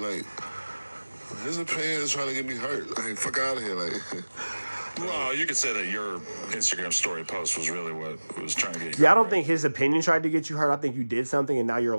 His opinion is trying to get me hurt. Like, fuck out of here, like... Well, you could say that your Instagram story post was really what was trying to get you. Yeah, I don't think his opinion tried to get you hurt. I think you did something and now you're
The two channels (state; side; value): inverted; both; correlation -1.00